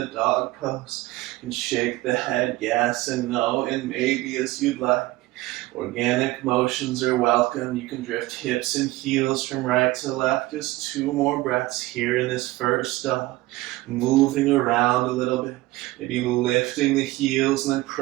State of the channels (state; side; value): quieter; left; 18.7 dB